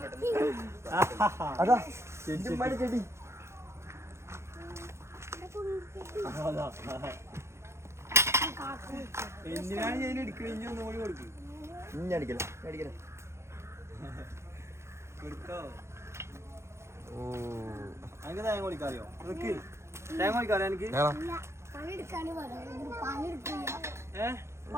അതാ ചെടി. എന്തിനാണ് ഞാൻ എടുക്കണേ? ഇനി ഒന്നും കൂടി കൊടുക്കും. അടിക്കല ഓ എനിക്ക് തേങ്ങ കൊടുക്കാറിയോ? നിക്ക് തേങ്ങ കൊടുക്കാറിയോ എനിക്ക്?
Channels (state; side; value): late; left; 0.13 ms